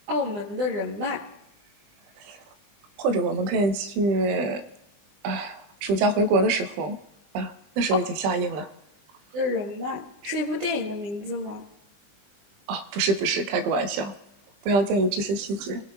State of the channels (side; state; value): left; late; 20 ms